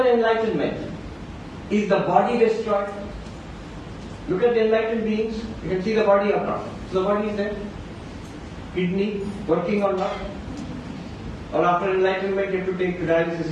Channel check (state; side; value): identical; both; correlation 1.00